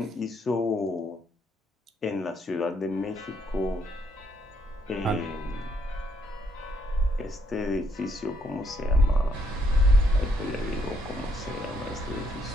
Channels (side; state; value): both; normal; correlation 0.73